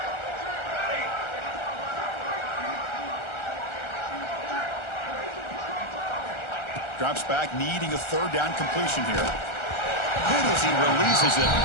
Drops back, needing a third down completion here. Good as he releases it,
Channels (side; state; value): right; late; 1.4 ms